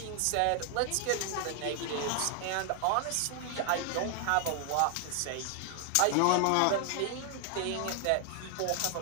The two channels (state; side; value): different; both; correlation 0.00